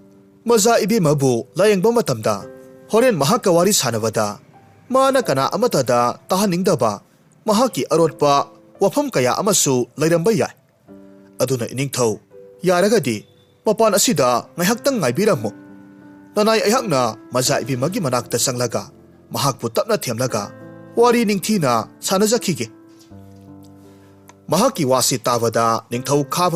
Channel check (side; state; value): both; identical; correlation 1.00